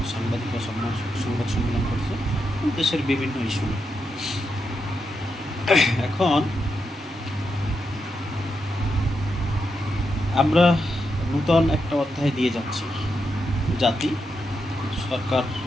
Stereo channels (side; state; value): both; normal; correlation 0.85